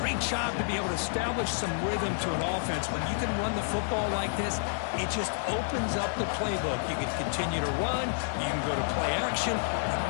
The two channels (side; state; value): right; silent; 56 dB below the other